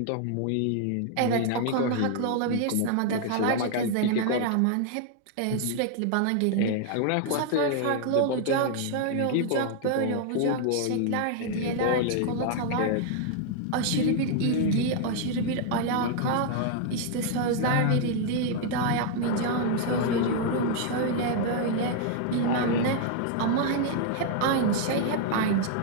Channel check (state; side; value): different; both; correlation 0.00